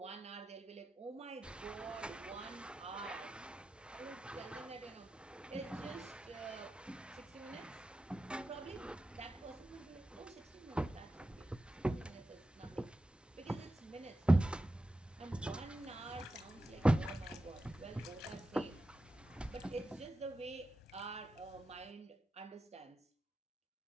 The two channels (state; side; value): normal; both; correlation 0.91